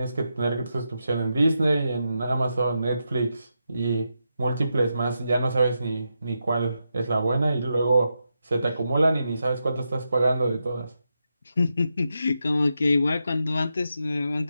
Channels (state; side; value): inverted; both; correlation -0.86